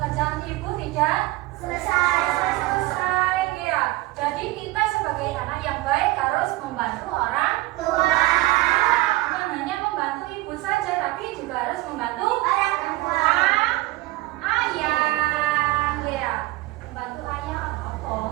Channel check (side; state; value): left; quieter; 19.3 dB